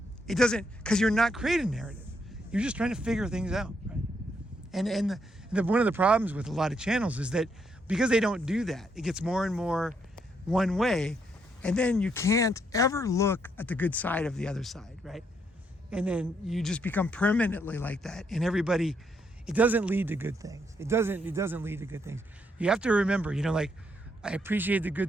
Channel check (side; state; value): both; normal; correlation 0.75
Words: It doesn't, because you're not creating narrative. You're just trying to figure things out, right? And one of the problems with a lot of channels is that because they don't do that, it gets more and more one way, and then you can't ever look at the good side of the other side, right? And then you just become permanently like that, and everybody, it doesn't lead to good things. It doesn't lead to good things. You have to remember, I appreciate the